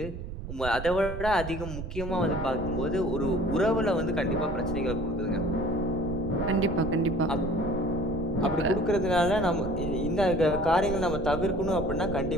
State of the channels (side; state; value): right; noise; rumble, 7 dB below the sound